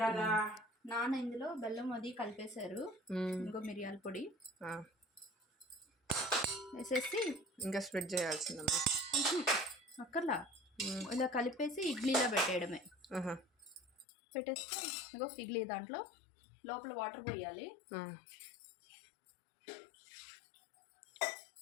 నాన్న ఇందులో బెల్లం అది కలిపేశారు. ఇంకో మిరియాల పొడి వేసేసి ఇంకా స్ప్రెడ్ చేయాల్సిందమ్మా. అక్కర్లా, ఇలా కలిపేసి ఇడ్లీలో పెట్టేయడమే. పెట్టేసి ఇంకో ఇడ్లీ దాంట్లో లోపల వాటర్ పోయాలి.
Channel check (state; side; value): drops out; right; at 14.1 s